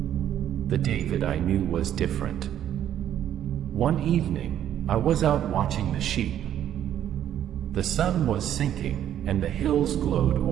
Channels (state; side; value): quieter; left; 10.7 dB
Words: The David I knew was different. One evening, I was out watching the sheep. The sun was sinking, and the hills glowed